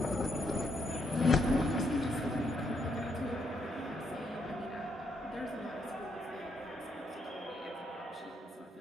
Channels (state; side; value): normal; both; correlation 0.76